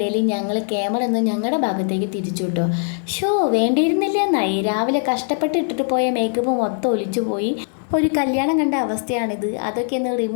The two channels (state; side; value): silent; right; 59 dB below the other